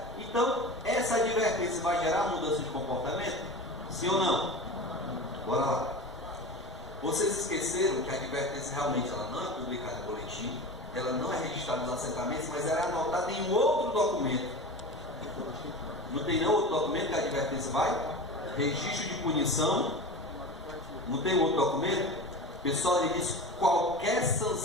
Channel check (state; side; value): normal; both; correlation 0.31